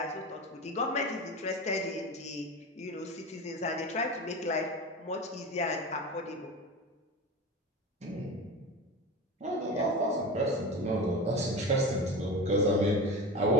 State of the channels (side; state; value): both; normal; correlation 0.27